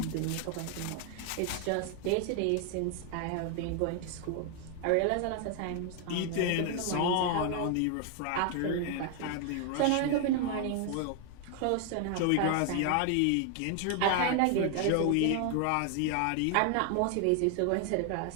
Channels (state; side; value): different; both; correlation 0.00